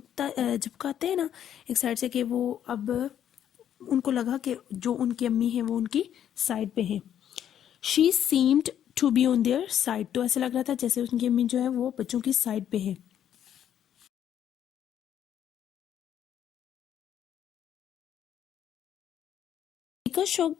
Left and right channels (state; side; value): quieter; right; 10.0 dB